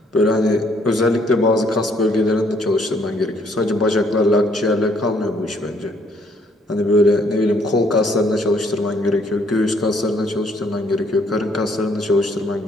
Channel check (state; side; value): normal; both; correlation 0.66